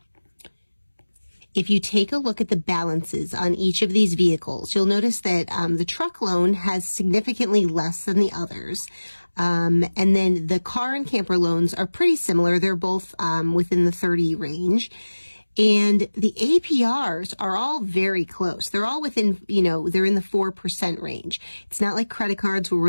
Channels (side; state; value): both; inverted; correlation -1.00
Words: If you take a look at the balances on each of these vehicles, you'll notice that the truck loan has significantly less than the others. And then the car and camper loans are pretty similar. They're both within the 30 range. And the APRs are all very close. They're all within, they're in the 4% range. It's not like credit cards where we're